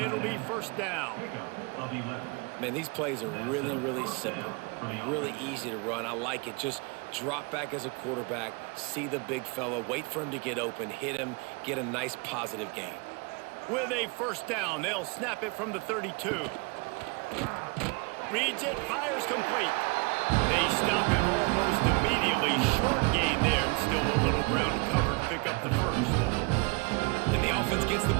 be first down. Man, these plays are really, really simple. Really easy to run. I like it. Just drop back as a quarterback, see the big fella, wait for him to get open, hit him, get a nice positive gain. With a first down, they'll snap it from the 32. Reads it, fires complete. They stop him almost immediately. Short gain there, and still a little ground covered to pick up the first. And the offense gets the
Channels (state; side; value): quieter; left; 29.9 dB